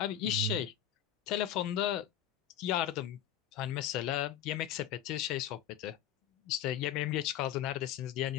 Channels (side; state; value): right; quieter; 10.2 dB